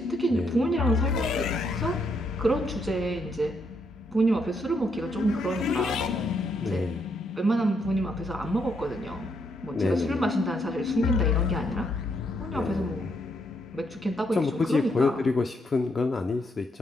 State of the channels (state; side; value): normal; both; correlation 0.76